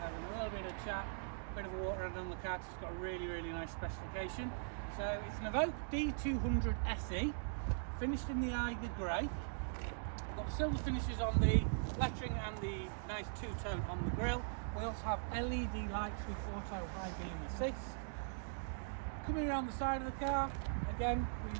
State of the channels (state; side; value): silent; left; digital silence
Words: a little bit of chat, a bit of a water run on the car. It's got a really nice specification. So it's an EVOQUE D200 SE, finished in the Eiger Grey. Got silver finishes on the lettering and the nice two-tone on the grille. We also have LED lights with auto high beam assist. Coming around the side of the car, again,